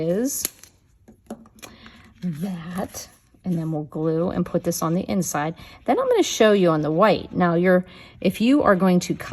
that, and then we'll glue and put this on the inside. Then I'm going to show you on the white. Now if you are going to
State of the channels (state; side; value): identical; both; correlation 1.00